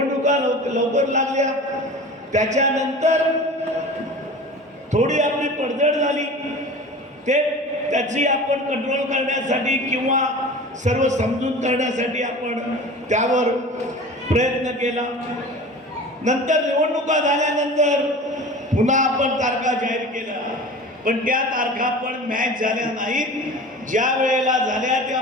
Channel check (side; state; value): both; normal; correlation 0.37